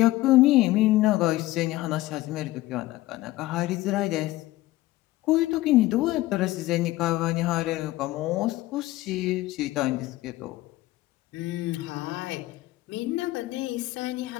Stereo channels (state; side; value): quieter; right; 17.3 dB